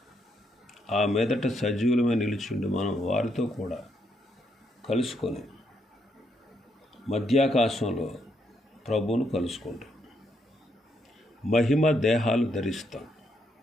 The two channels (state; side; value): normal; both; correlation 0.76